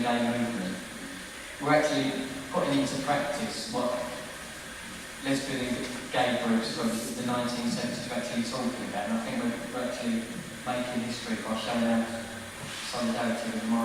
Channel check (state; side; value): identical; both; correlation 1.00